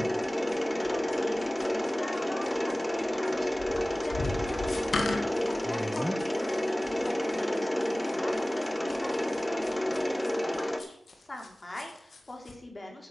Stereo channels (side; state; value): both; normal; correlation 0.98